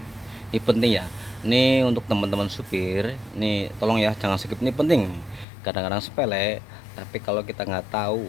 Ini penting ya. Ini untuk teman-teman supir. Nih, tolong ya jangan skip, ini penting. Kadang-kadang sepele, tapi kalau kita nggak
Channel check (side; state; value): right; drops out; at 5.5 s